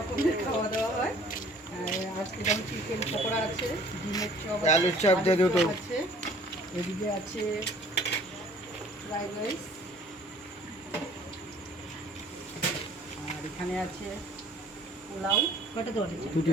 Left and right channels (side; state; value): both; normal; correlation 0.53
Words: খাওয়া দাওয়া হয়। আজকে যেমন চিকেন পকোড়া আছে, ডিমের চপ, আলুর চপ আছে, এদিকে আছে ফ্রাইড রাইস, আর এখানে আছে পোলাও। কটা দেওয়া আছে?